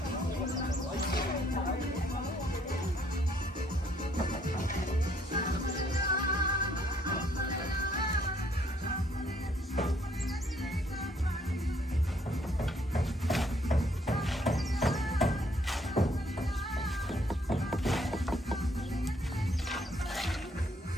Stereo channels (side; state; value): both; normal; correlation 0.66